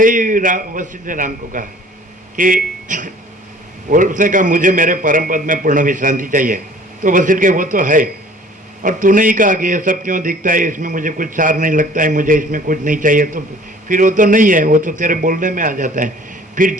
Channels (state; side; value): normal; both; correlation 0.51